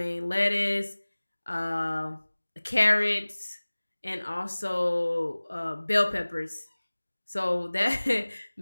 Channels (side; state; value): both; inverted; correlation -1.00